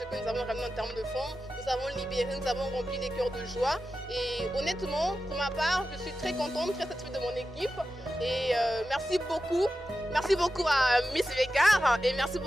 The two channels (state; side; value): normal; both; correlation 0.92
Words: que nous avons ramené en termes de fonds, nous avons libéré, nous avons rempli les cœurs de joie et honnêtement pour ma part je suis très contente, très satisfaite de mon équipe et merci beaucoup à Miss Vegard et merci